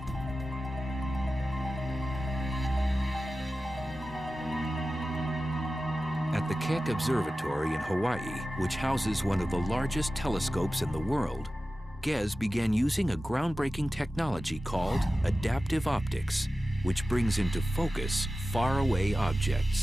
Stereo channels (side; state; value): both; normal; correlation 0.94